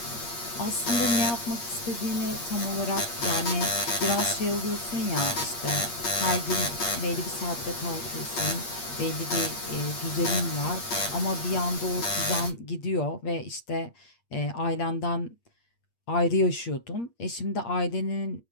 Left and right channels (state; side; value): late; right; 8.5 ms